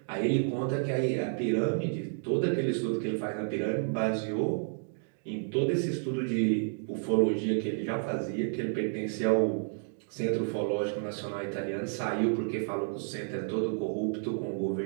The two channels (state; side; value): silent; left; 57 dB below the other